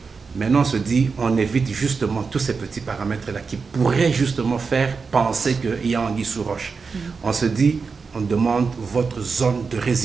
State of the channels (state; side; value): quieter; left; 5.0 dB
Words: Maintenant, on se dit, on évite justement tous ces petits paramètres-là qui pourraient justement faire penser qu'il y a anguille sous roche. On se dit, on demande votre zone de